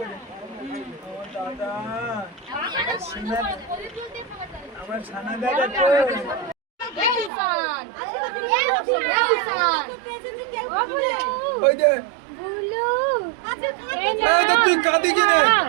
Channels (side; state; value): left; drops out; at 7.3 s